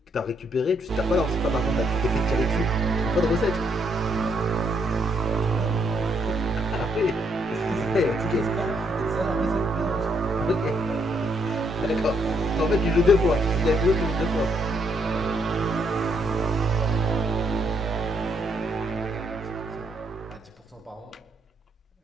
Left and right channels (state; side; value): normal; both; correlation 0.73